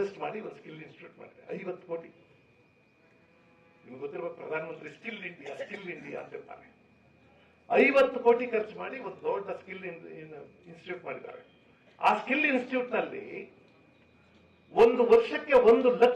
ಮಾಡಿ ಒಂದು ಸ್ಕಿಲ್ ಇನ್ಸ್ಟಿಟ್ಯೂಟ್ ಮಾಡಿದೆ. 50 ಕೋಟಿ. ನಿಮ್ಗೆ ಗೊತ್ತಿರುವ ಪ್ರಧಾನಮಂತ್ರಿ ಸ್ಕಿಲ್ ಇಂಡಿಯಾ ಅಂತ ಇರ್ತಾರೆ. 50 ಕೋಟಿ ಖರ್ಚು ಮಾಡಿ ಒಂದು ದೊಡ್ಡ ಸ್ಕಿಲ್ ಇನ್ಸ್ಟಿಟ್ಯೂಟ್ ಮಾಡಿದ್ದಾರೆ. ಆ ಸ್ಕಿಲ್ ಇನ್ಸ್ಟಿಟ್ಯೂಟ್ ನಲ್ಲಿ ಒಂದು ವರ್ಷಕ್ಕೆ 1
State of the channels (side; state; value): both; identical; correlation 1.00